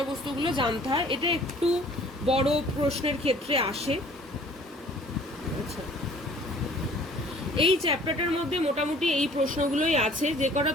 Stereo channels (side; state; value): both; normal; correlation 0.53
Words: জানতে হয়। এটা একটু বড় প্রশ্নের ক্ষেত্রে আসে। আচ্ছা, এই চ্যাপ্টারটার মধ্যে মোটামুটি এই প্রশ্নগুলোই আছে। যে কটা